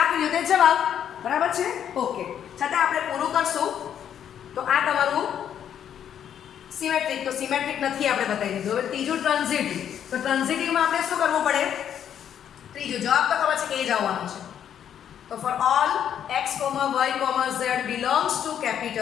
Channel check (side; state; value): right; quieter; 9.3 dB